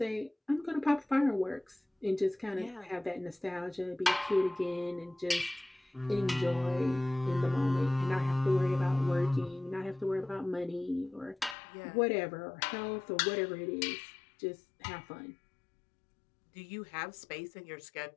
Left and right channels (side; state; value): right; drops out; at 11.6 s